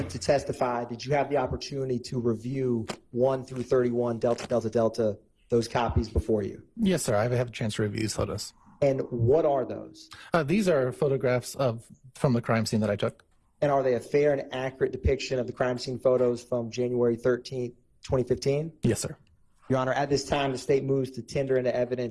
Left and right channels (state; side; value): identical; both; correlation 1.00